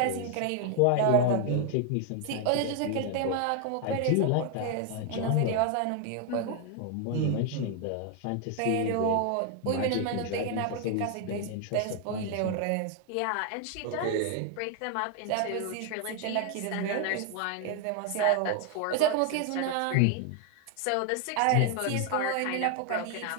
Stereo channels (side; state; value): both; different; correlation 0.00